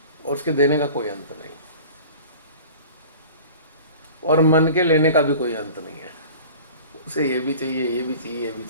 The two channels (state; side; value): inverted; both; correlation -0.42